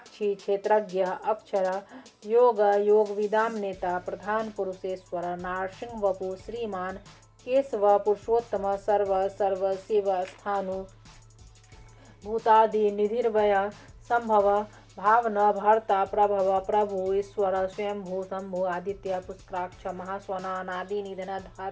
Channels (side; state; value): both; identical; correlation 1.00